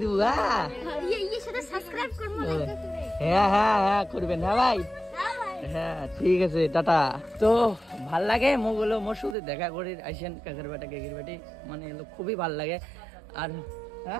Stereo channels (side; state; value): left; drops out; at 9.3 s